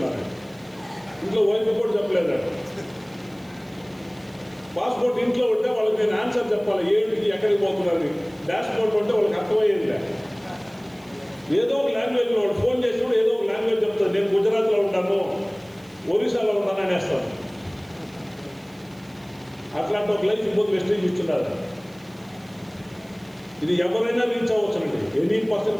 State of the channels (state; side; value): noise; right; hiss, 28 dB below the sound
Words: ఇంట్లో వైఫ్ కూడా చెప్పలేదండి. పాస్పోర్ట్ ఇంట్లో ఉంటే వాళ్ళకి నేను ఆన్సర్ చెప్పాలి, ఏంటికి ఎక్కడికి పోతున్నారని. డాష్ బోర్డ్ ఉంటే వాళ్ళకి అర్థమయ్యేది. ఏదో ఒక లాంగ్వేజ్లో వాడు ఫోన్ చేసినప్పుడు ఏదో ఒక లాంగ్వేజ్ చెప్తాడు, నేను గుజరాత్లో ఉంటాను, ఒరిస్సాలో ఉంటాను అనేస్తాను. అట్లాంటి ఒక లైఫ్ ఇంకొక వెస్టేజ్ ఇస్తున్నారు. ఇది ఎవరైనా రీచ్ అవ్వచ్చునండి, ఎనీ